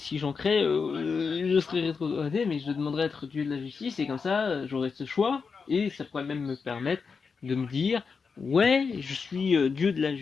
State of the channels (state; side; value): quieter; right; 5.3 dB